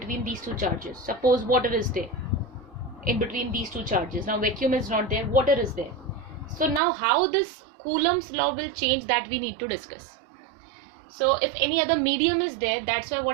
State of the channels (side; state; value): left; drops out; at 6.8 s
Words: these two charges, suppose water is there in between these two charges. Now vacuum is not there, water is there. So now how this Coulomb's law will change, that we need to discuss. So if any other medium is there, that's why